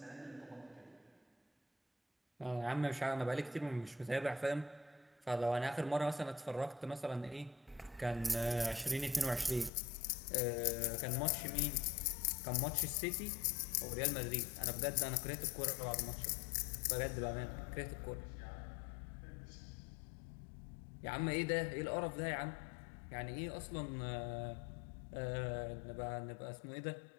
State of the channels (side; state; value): right; drops out; at 9.7 s